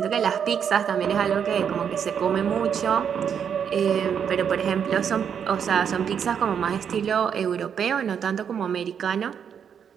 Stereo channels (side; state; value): left; quieter; 7.7 dB